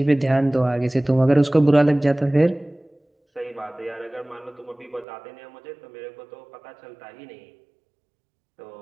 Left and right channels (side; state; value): left; drops out; at 5.1 s